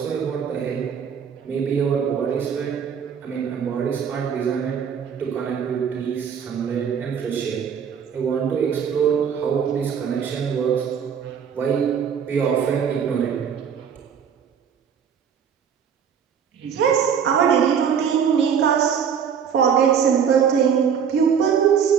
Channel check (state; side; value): quieter; left; 7.5 dB